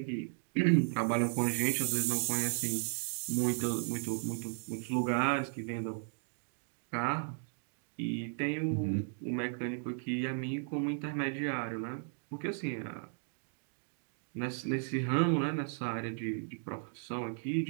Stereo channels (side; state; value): left; silent; 54 dB below the other